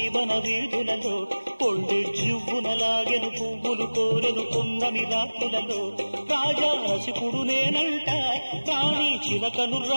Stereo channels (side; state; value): both; inverted; correlation -1.00